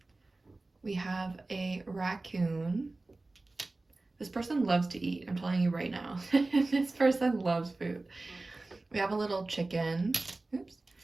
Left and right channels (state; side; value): quieter; left; 3.2 dB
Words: We have a raccoon. This person loves to eat, I'm telling you right now. This person loves food. We have a little chicken. Oops.